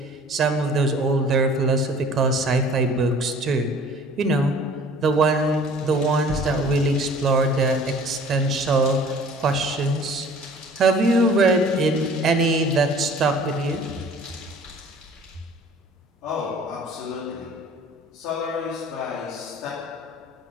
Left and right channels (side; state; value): both; normal; correlation 0.49